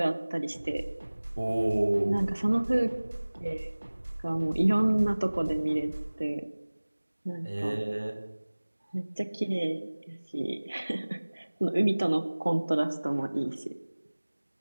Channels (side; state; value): both; inverted; correlation -1.00